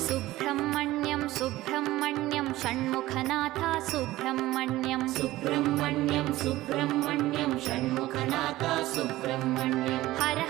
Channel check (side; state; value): left; quieter; 16.9 dB